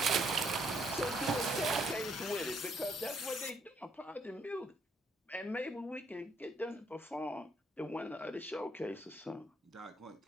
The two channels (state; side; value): normal; both; correlation 0.70